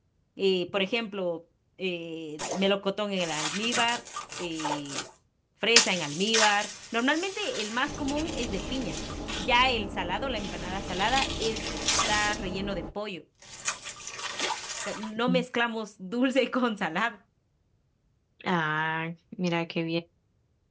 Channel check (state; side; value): identical; both; correlation 1.00